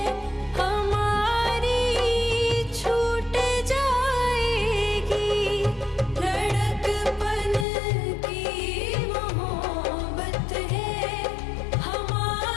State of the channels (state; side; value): drops out; right; at 7.7 s